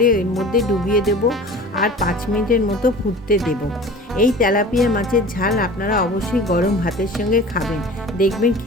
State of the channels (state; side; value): normal; both; correlation 0.40